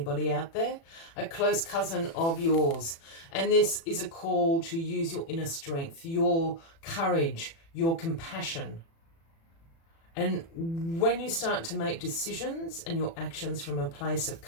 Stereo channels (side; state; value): right; late; 36 ms